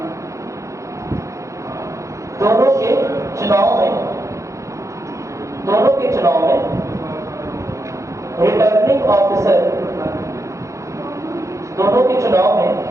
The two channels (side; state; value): left; late; 0.15 ms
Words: दोनों के चुनाव में रिटर्निंग ऑफिसर, दोनों के चुनाव में